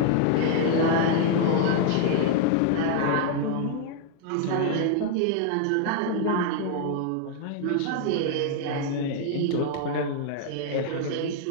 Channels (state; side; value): different; both; correlation 0.00